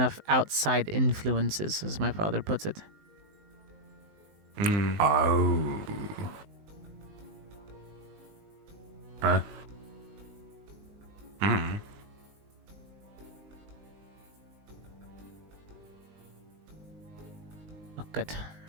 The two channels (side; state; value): left; late; 19 ms